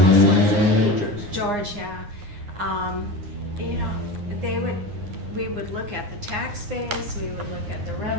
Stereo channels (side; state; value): left; late; 9.7 ms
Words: was it? George, yeah. You know, we would look at the tax base, we would look at the